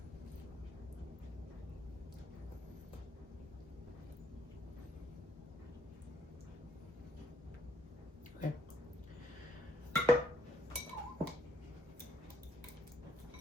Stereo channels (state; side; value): normal; both; correlation 0.70